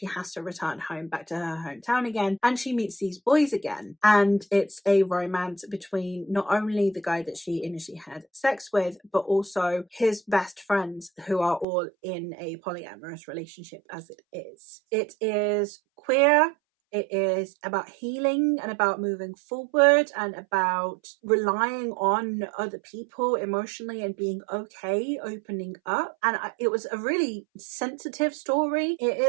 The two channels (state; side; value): drops out; left; at 11.7 s